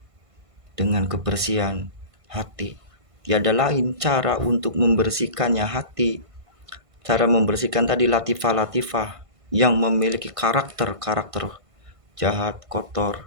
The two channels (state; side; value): late; left; 1.5 ms